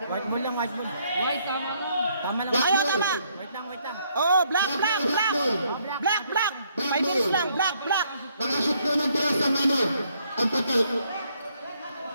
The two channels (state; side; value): inverted; both; correlation -0.70